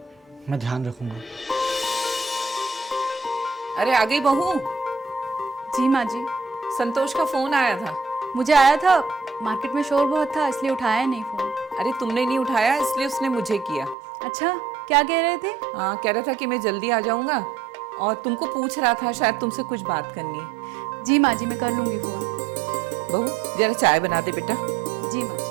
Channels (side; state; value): left; drops out; at 14.0 s